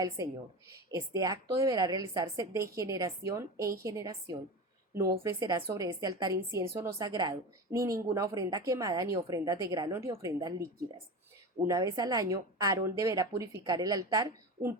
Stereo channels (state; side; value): normal; both; correlation 0.27